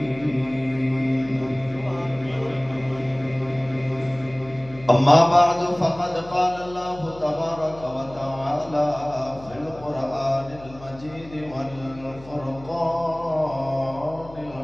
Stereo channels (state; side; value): noise; left; hum, 19 dB below the sound